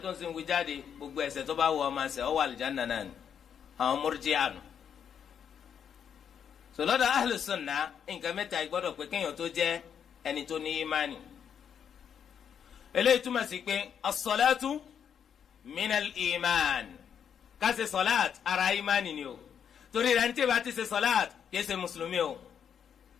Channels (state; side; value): quieter; right; 8.0 dB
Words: tó ń sin wí jáde gbogbo ẹ̀ṣẹ̀ tó bá wù ọ́ máa ṣe ọ́ wà àlùjánnà náà ni àwọn murji'a nù. sọlọ́dọ̀ ahlu sunna nǹkan mẹ́ta gbọ́dọ̀ pé kéèyàn tó jẹ́ ẹni tó ní ìmánì eléyìí túmọ̀ sí pé as-salatu minal iman ká ṣe sọláàt ara ìmánì ni o torí rẹ̀ ní tí ìbá ti ṣe sọláàt kìí ṣe mùsùlùmí o